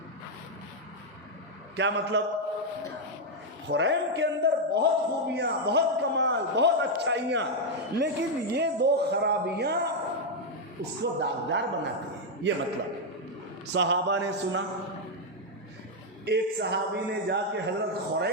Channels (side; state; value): both; normal; correlation 0.00